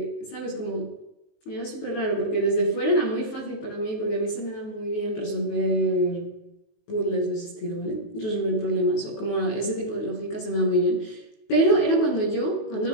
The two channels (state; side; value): late; right; 19 ms